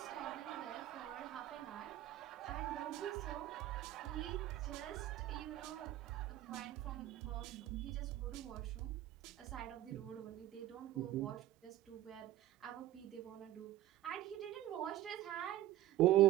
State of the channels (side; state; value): left; quieter; 14.2 dB